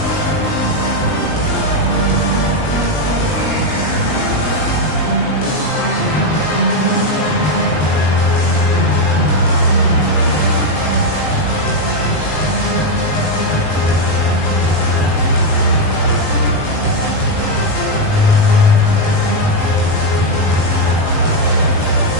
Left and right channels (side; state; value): right; late; 19 ms